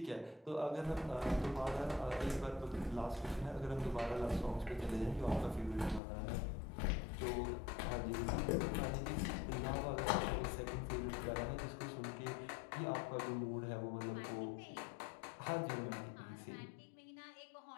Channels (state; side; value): drops out; right; at 6.0 s